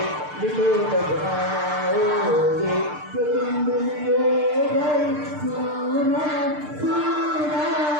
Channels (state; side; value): late; left; 6.7 ms